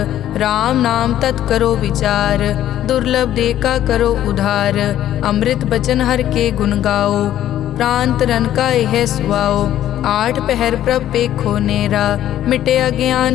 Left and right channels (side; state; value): right; quieter; 12.1 dB